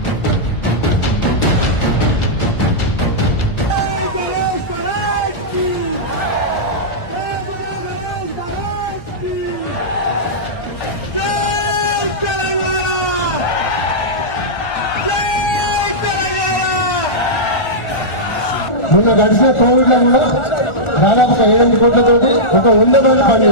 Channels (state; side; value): late; right; 1.4 ms